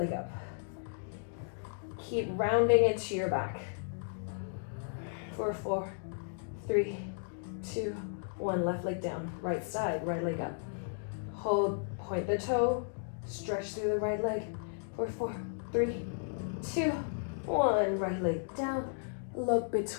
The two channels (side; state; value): right; silent; digital silence